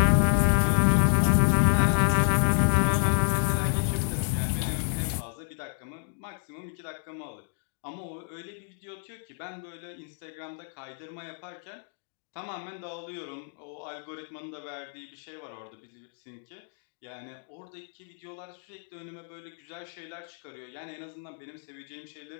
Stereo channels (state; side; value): silent; right; 58 dB below the other